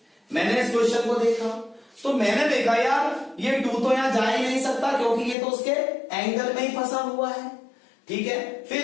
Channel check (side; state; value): right; drops out; at 5.4 s